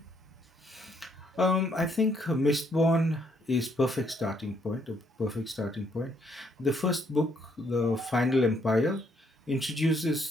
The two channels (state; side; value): normal; both; correlation 0.71